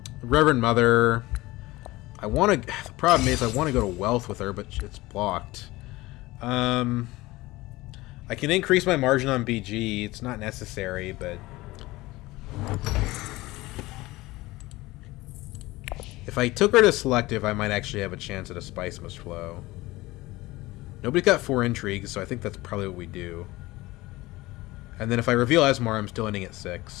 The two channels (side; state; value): right; quieter; 19.7 dB